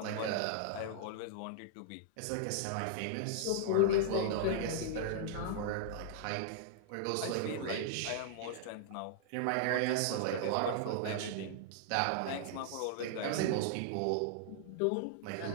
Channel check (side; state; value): both; different; correlation -0.01